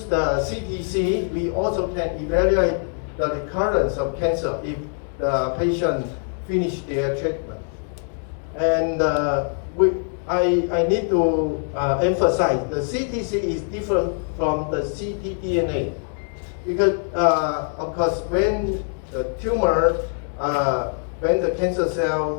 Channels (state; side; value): silent; right; 61 dB below the other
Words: the CTC, we also can evaluate the recurrence of cancer if the patient finish their treatment. And I need to emphasize the CTC is different from the ctDNA because of course when the tumor, when the cancer cell